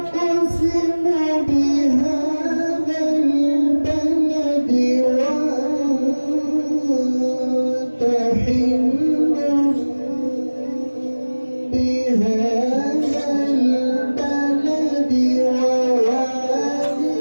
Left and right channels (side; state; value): both; inverted; correlation -1.00